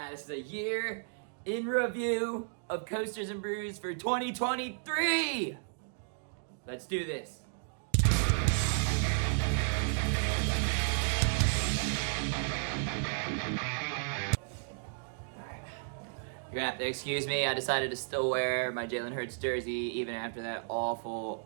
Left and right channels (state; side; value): silent; left; digital silence